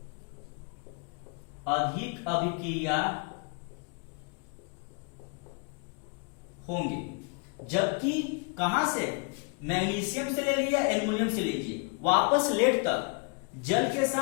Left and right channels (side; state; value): right; quieter; 36.6 dB